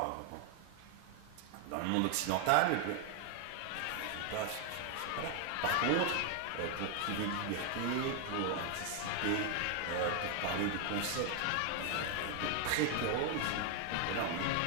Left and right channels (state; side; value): different; both; correlation 0.00